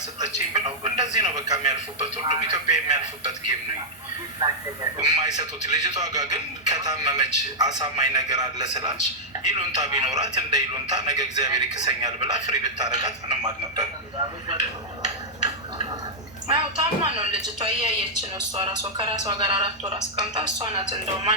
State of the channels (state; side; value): normal; both; correlation -0.07